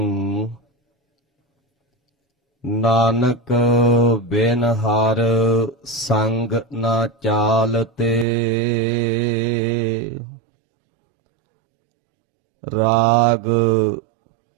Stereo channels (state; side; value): drops out; left; at 8.2 s